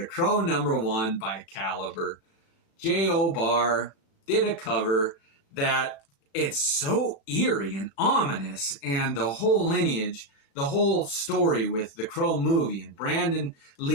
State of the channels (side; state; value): right; late; 35 ms